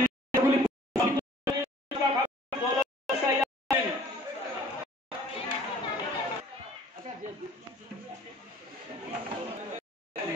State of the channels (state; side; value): normal; both; correlation 0.52